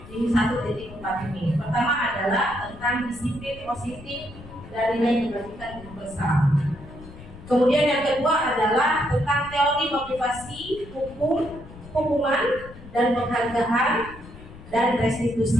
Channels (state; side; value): noise; left; rumble, 17 dB below the sound